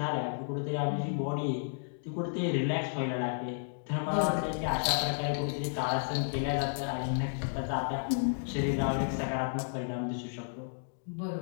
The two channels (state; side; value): silent; right; digital silence